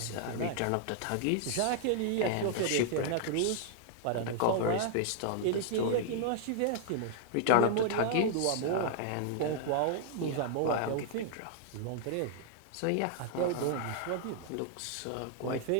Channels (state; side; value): different; both; correlation 0.00